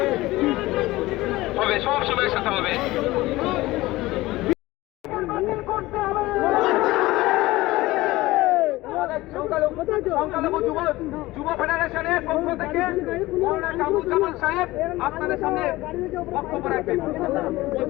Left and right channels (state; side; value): quieter; right; 18.8 dB